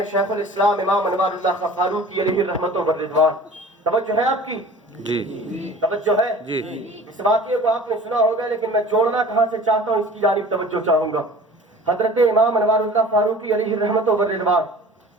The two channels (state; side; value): normal; both; correlation 0.43